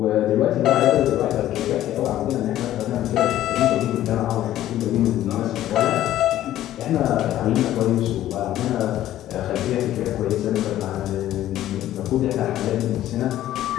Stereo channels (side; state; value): right; quieter; 13.1 dB